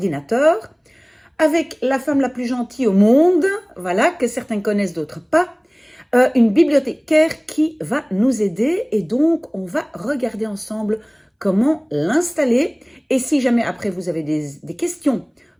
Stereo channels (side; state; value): both; identical; correlation 1.00